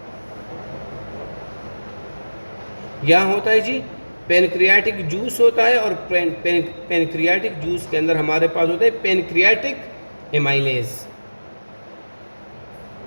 यहाँ होता है जी पैनक्रियाटिक जूस होता है, और पैनक्रियाटिक जूस के अंदर हमारे पास होता है पैनक्रियाटिक एमाइलेज।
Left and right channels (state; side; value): inverted; both; correlation -1.00